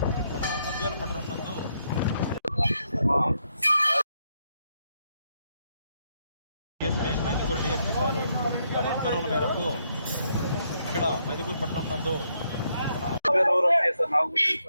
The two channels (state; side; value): inverted; both; correlation -0.76